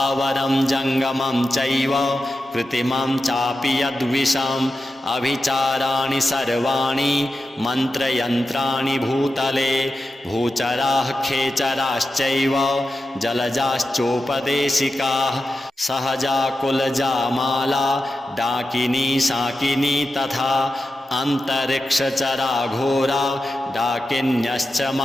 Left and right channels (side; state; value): both; normal; correlation 0.91